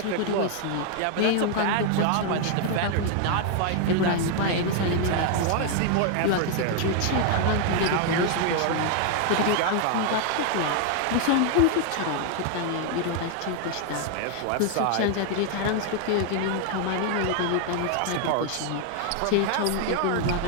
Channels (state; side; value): different; both; correlation 0.00